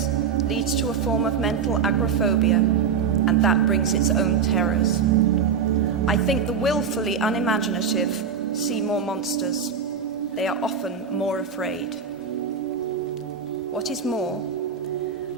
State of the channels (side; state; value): left; quieter; 6.5 dB